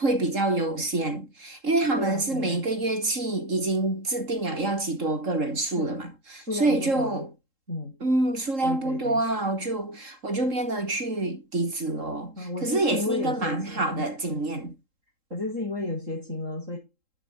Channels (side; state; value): left; late; 3.7 ms